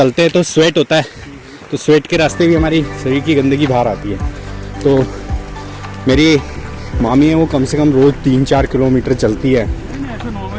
हैं तो स्वेट होता है, तो स्वेट के रास्ते भी हमारी शरीर की गंदगी बाहर आती है। तो मेरी मामी है, वो कम से कम रोज़ 3-4 किलोमीटर चलती है ऐसे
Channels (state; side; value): identical; both; correlation 1.00